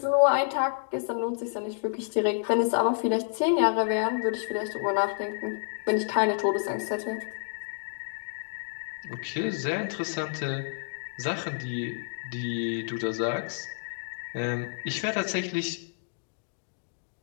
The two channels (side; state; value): right; silent; digital silence